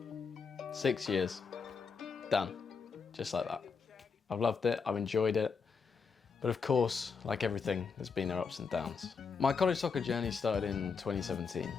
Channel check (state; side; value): quieter; right; 5.4 dB